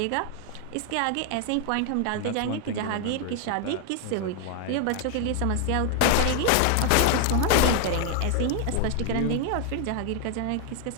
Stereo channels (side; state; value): both; different; correlation 0.00